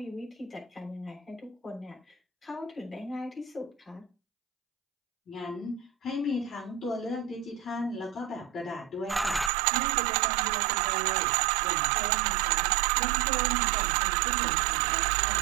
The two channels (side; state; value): left; drops out; at 9.5 s